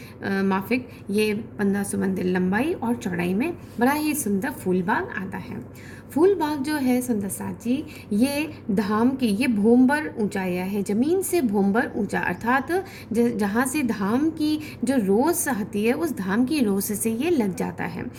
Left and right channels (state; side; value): identical; both; correlation 1.00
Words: माफिक ये 1500 मंदिर लंबाई और चौड़ाई में बड़ा ही सुंदर फूलबाग आता है। फूलबाग जो है सुंदर साथ जी, ये धाम की ये भोंबर ऊंचाइया है, ज़मीन से भोंबर ऊंचा, अर्थात जहाँ से धाम की जो रोस आती है उस धाम की रोस से ये लग जाता है।